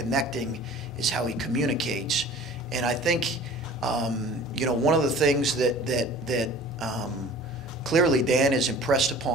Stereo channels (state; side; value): normal; both; correlation 0.45